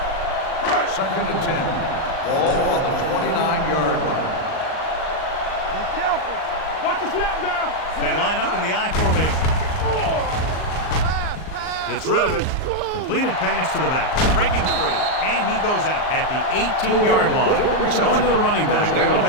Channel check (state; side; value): late; right; 38 ms